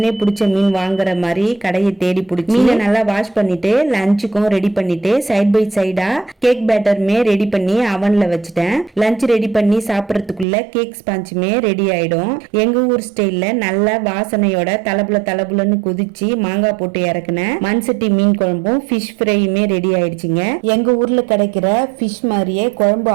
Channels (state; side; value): drops out; left; at 10.5 s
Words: பிடிச்ச மீன் வாங்குற மாதிரி கடையை தேடி பிடிச்சி மீனை நல்லா வாஷ் பண்ணிட்டு லஞ்சுக்கும் ரெடி பண்ணிட்டு சைட் பை சைடா கேக் பேட்டருமே ரெடி பண்ணி அவன்ல வச்சுட்டேன். லஞ்ச் ரெடி பண்ணி சாப்பிடறதுக்குள்ள கேக் ஸ்பாஞ்சுமே ரெடி ஆயிடும். எங்க ஊர் ஸ்டைல்ல நல்ல வாசனையோட தலபுலன்னு குதிச்சு மாங்காய் போட்டு இறக்குன மண்சட்டி மீன் குழம்பும் ஃபிஷ் ஃப்ரையுமே ரெடி ஆயிடுச்சுங்க. எங்க ஊர்ல கிடைக்கிற ஃபிஷ் மாதிரியே குழம்பு